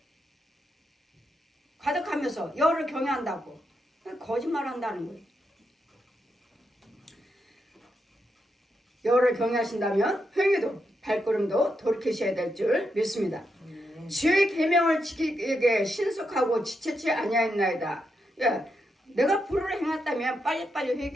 여호와를 경외한다고. 거짓말한다는 거예요. 여호와를 경외하신다면 행위도 발걸음도 돌이키셔야 될 줄 믿습니다. 주의 계명을 지키기에 신속하고 지체치 아니하였나이다. 예, 내가 불의를 행했다면 빨리빨리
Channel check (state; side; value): normal; both; correlation 0.83